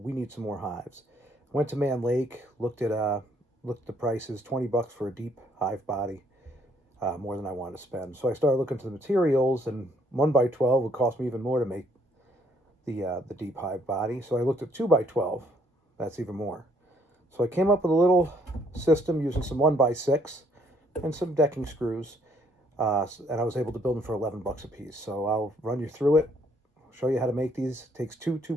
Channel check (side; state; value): both; normal; correlation 0.66